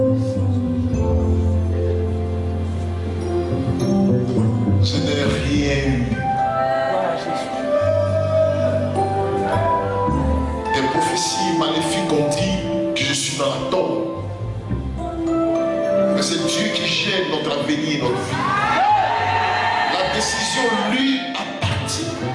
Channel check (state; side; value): identical; both; correlation 1.00